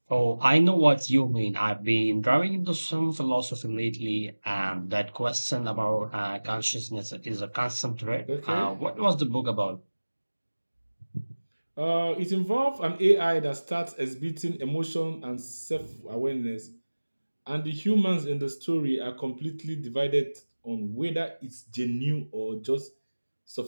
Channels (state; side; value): inverted; both; correlation -1.00